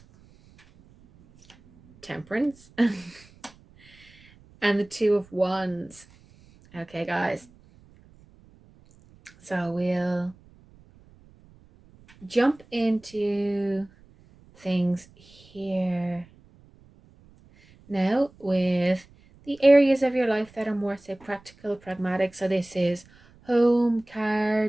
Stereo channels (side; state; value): right; noise; rumble, 27 dB below the sound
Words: Temperance, and the 2 of Wands. Okay, guys. So we'll jump into things here now with the areas of your life that are more, say, practical, pragmatic. So this is home, car,